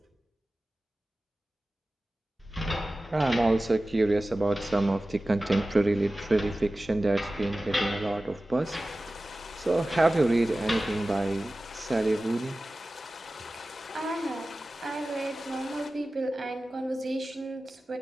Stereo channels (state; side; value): normal; both; correlation 0.96